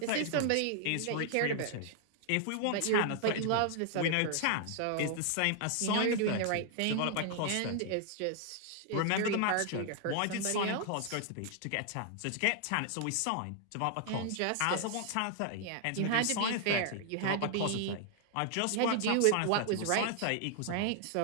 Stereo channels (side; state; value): both; different; correlation 0.00